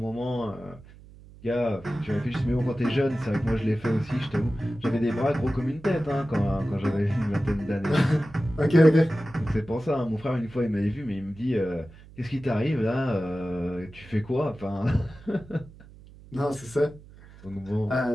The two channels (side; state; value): right; noise; hum, 21 dB below the sound